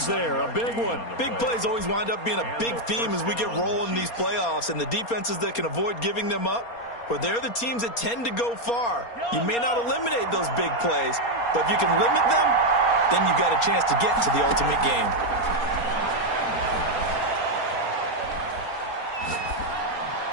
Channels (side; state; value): right; late; 4.3 ms